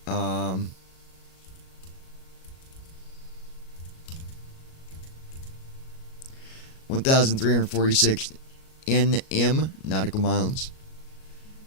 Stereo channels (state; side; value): late; right; 38 ms